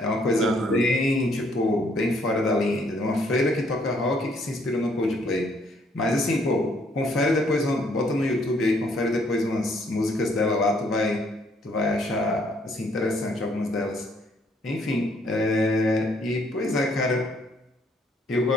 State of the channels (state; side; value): normal; both; correlation 0.67